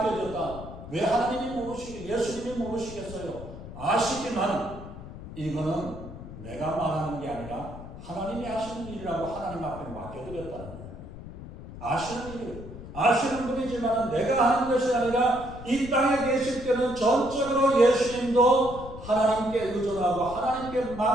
왜 예수님이 모르시겠어요? 아시지만 이거는 내가 말하는 게 아니라 하나님이 하시는 일이라고 하나님 앞에 맡겨드렸다는 거예요. 아시는 일, 아시는 분이지만 내가 하는 것이 아니라 이 땅에 계실 때는 전적으로 예수님도 하나님께 의존하고 하나님께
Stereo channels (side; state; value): left; noise; rumble, 13 dB below the sound